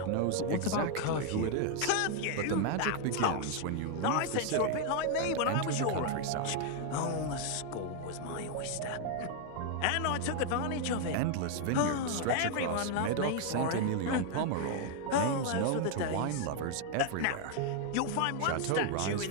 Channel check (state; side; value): different; both; correlation 0.00